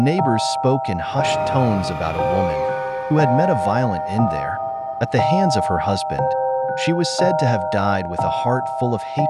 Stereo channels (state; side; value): identical; both; correlation 1.00